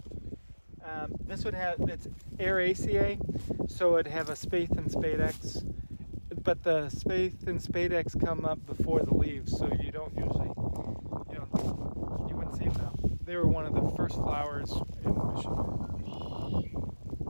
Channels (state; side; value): inverted; both; correlation -1.00